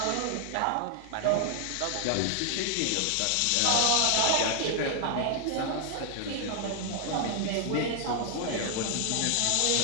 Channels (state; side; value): different; both; correlation 0.00